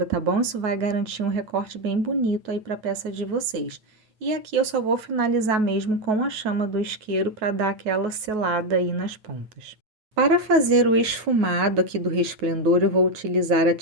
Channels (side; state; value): left; late; 9.3 ms